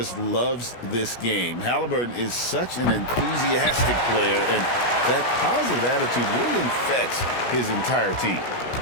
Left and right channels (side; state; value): right; late; 17 ms